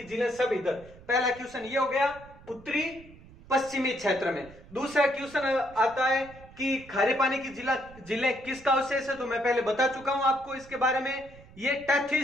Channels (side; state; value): right; noise; rumble, 21 dB below the sound